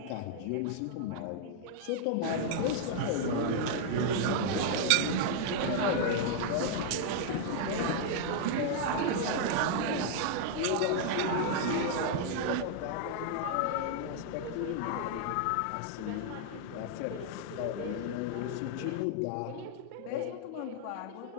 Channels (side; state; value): both; different; correlation -0.01